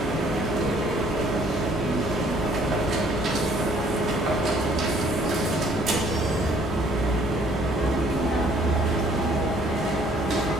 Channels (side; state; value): both; normal; correlation 0.60